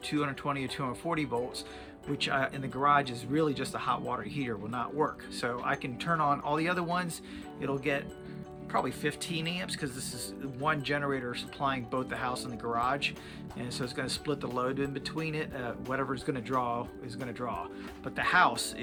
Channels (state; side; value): identical; both; correlation 1.00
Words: 220 or 240 volts, which in the garage is really just a hot water heater, will not work. So I can turn on all the other ones. It'll get probably 15 amps because this is one generator supplying both the house and the garage, and so it's going to split the load in between it. Whatever is going to draw is going to draw, but the house